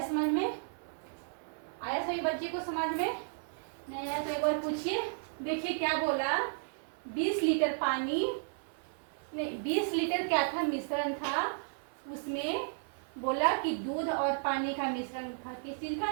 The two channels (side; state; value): left; silent; 55 dB below the other